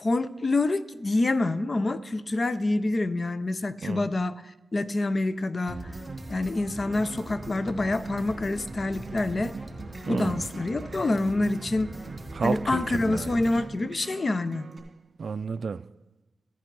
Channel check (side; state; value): both; normal; correlation 0.95